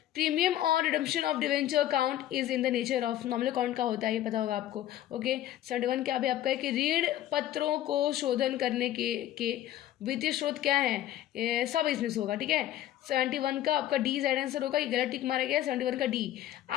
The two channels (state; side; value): quieter; right; 13.0 dB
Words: premium on redemption of debenture account is in the nature of, nominal account का होता है ये पता होगा आपको, ओके। 71 क्या अभी आपका है कि ऋण पत्रों को शोधन करने के वित्तीय स्रोत क्या है, सब इसमें से होगा, ठीक है। 71 का आपका डी साइड आंसर होगा, ये गलत टिक मारा गया है। 71 का डी,